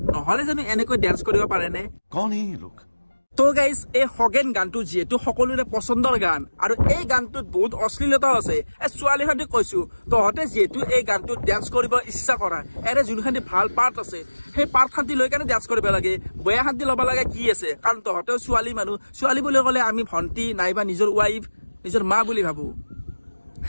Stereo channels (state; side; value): inverted; both; correlation -1.00